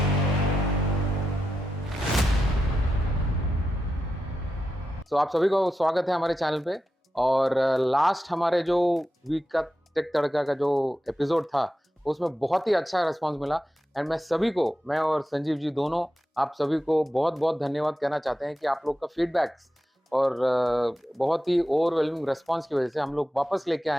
So, आप सभी को स्वागत है हमारे चैनल पे। और लास्ट हमारे जो वीक का टेक तड़का का जो एपिसोड था उसमें बहुत ही अच्छा रिस्पांस मिला। एंड मैं और संजीव जी दोनों आप सभी को बहुत बहुत धन्यवाद कहना चाहते हैं कि आप लोग का फीडबैक्स और बहुत ही ओवरवेलमिंग रिस्पांस की वजह से हम लोग वापस लेके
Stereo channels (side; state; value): both; normal; correlation 0.90